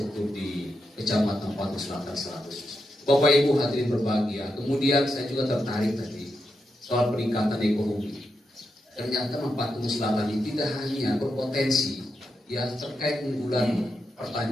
di Kecamatan Patu Selatan Selatan. Bapak Ibu hadirin berbahagia. Kemudian saya juga tertarik tadi soal peningkatan ekonomi. Ternyata Patu Selatan ini tidak hanya berpotensi ya terkait unggulan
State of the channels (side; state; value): both; normal; correlation 0.85